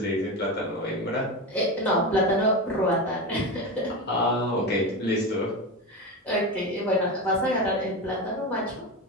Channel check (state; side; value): normal; both; correlation 0.20